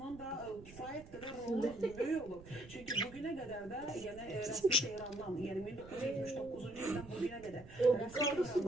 da kifayət qədər rolu böyük olub. Çünki bugünə qədər də yəni rəsmi Tehrandan, yəni 1979-cu ildən bugünə qədər rəsmi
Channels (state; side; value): noise; right; rumble, 18 dB below the sound